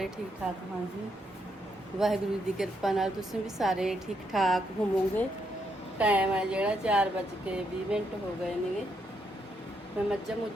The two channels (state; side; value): normal; both; correlation 0.77